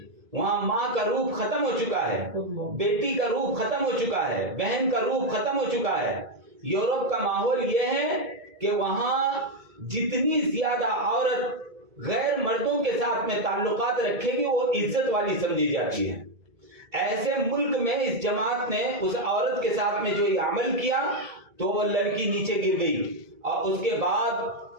وہاں ماں کا روپ ختم ہو چکا ہے، بیٹی کا روپ ختم ہو چکا ہے، بہن کا روپ ختم ہو چکا ہے. یورپ کا ماحول یہ ہے کہ وہاں جتنی زیادہ عورت غیر مردوں کے ساتھ میں تعلقات رکھے گی وہ عزت والی سمجھی جاتی ہے. ایسے ملک میں اس جماعت نے اس عورت کے ساتھ میں جو یہ عمل کیا تو وہ لڑکی نیچے گر گئی، اور اس کے بعد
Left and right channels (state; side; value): late; left; 1.7 ms